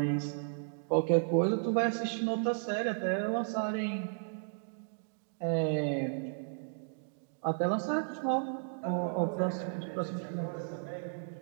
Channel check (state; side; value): silent; left; digital silence